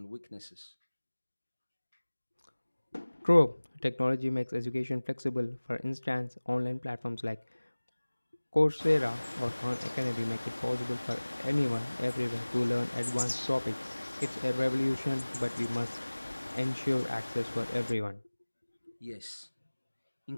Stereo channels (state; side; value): inverted; both; correlation -1.00